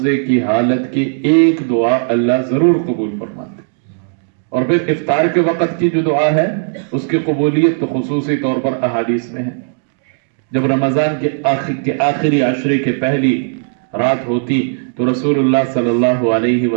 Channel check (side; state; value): left; silent; digital silence